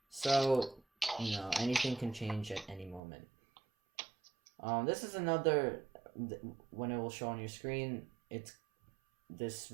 So, anything can change at any moment. This is another, when it will show on your screen, this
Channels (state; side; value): drops out; left; at 3.0 s